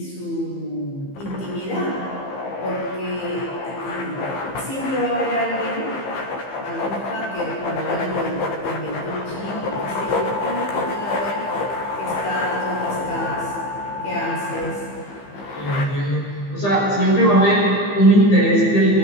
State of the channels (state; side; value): late; right; 15 ms